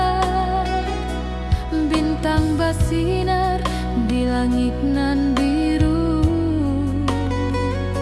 langit nan biru.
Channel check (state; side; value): identical; both; correlation 1.00